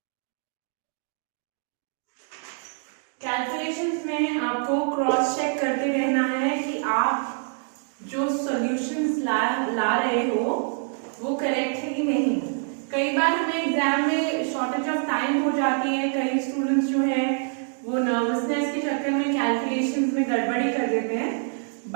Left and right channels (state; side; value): silent; left; 55 dB below the other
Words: कैलकुलेशंस में आपको क्रॉस चेक करते रहना है कि आप जो सॉल्यूशंस ला रहे हो वो करेक्ट है कि नहीं. कई बार हमें एग्जाम में शॉर्टेज ऑफ टाइम हो जाती है, कई स्टूडेंट्स जो है वो नर्वसनेस के चक्कर में कैलकुलेशंस में गड़बड़ी कर देते हैं.